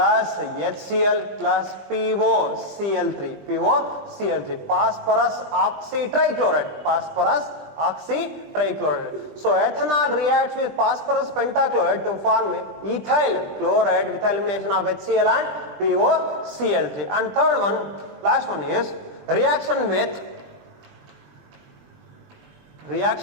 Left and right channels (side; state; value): left; late; 20 ms